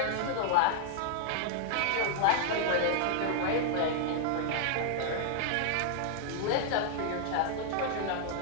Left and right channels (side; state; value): both; different; correlation -0.01